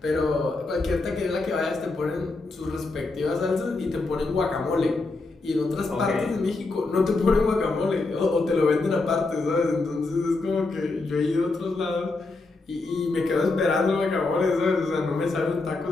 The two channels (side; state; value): right; quieter; 3.4 dB